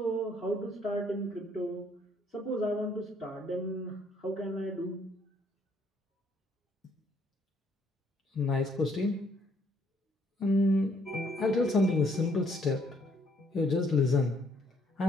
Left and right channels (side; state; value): both; normal; correlation 0.67